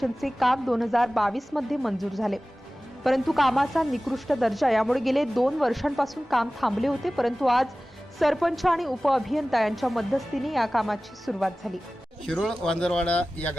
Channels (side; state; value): both; normal; correlation 0.97